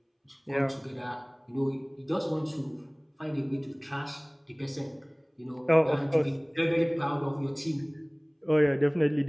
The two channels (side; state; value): both; identical; correlation 1.00